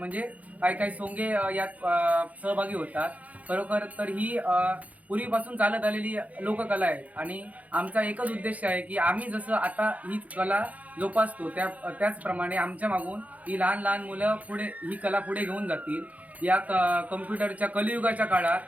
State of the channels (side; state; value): left; late; 0.072 ms